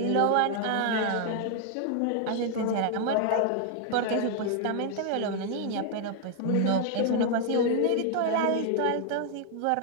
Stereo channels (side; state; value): both; different; correlation 0.00